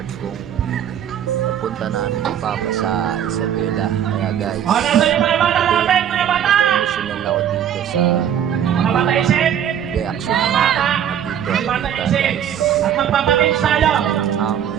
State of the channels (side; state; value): left; quieter; 9.5 dB